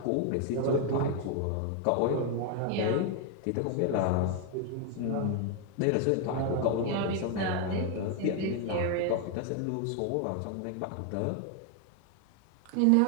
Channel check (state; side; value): different; both; correlation 0.00